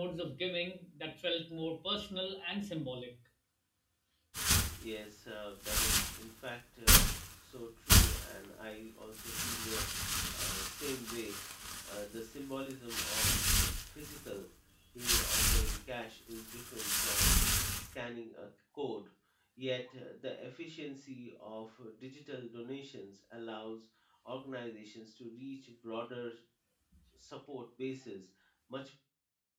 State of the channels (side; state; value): both; identical; correlation 1.00